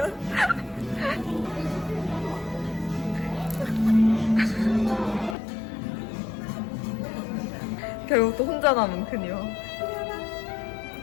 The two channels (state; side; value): drops out; right; at 5.4 s